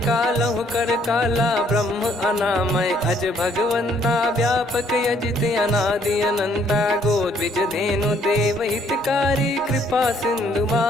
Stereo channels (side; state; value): both; normal; correlation 0.65